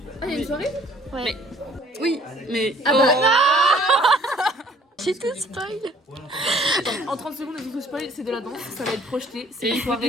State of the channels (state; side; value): normal; both; correlation 0.57